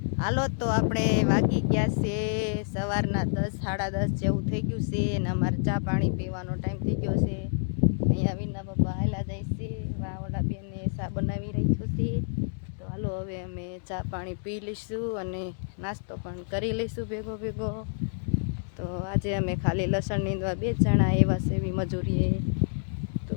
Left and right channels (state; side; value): silent; right; digital silence